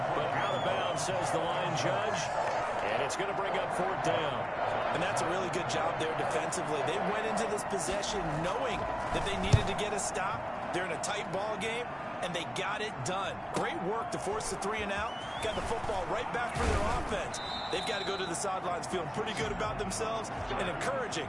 but out of bounds, says the line judge. And it's going to bring up fourth down. And that's a really good job there defensively. They went into this possession knowing that they needed to get a stop. They're in a tight ball game, and they got it done. Great work to force the 3 and out. Got the football right back for their offense. They've got to go to the sidelines feeling pretty good about themselves and encouraging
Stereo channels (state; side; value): identical; both; correlation 1.00